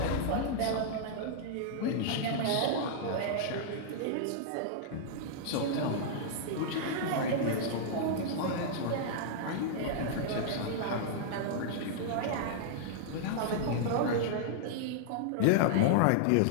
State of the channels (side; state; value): both; different; correlation -0.01